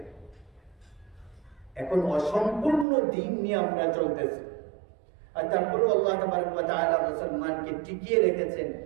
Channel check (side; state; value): left; drops out; at 2.9 s